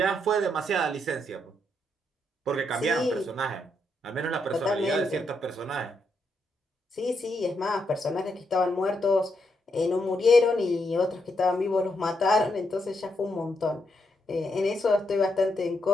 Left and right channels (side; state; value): both; normal; correlation 0.79